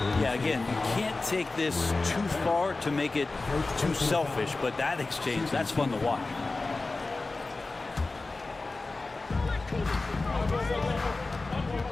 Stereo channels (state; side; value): quieter; right; 3.4 dB